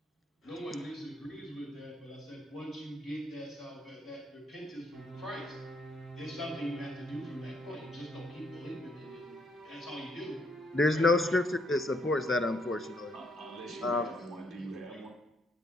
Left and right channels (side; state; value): both; normal; correlation 0.71